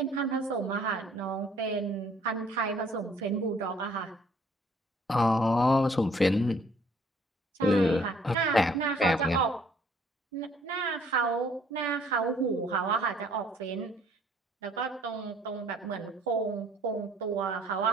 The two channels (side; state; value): both; normal; correlation 0.60